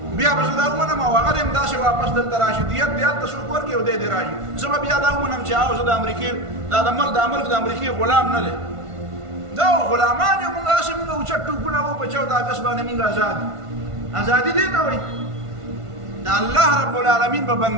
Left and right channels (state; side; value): late; left; 1.5 ms